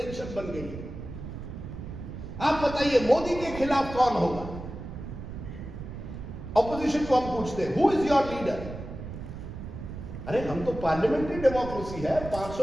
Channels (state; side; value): noise; right; rumble, 10 dB below the sound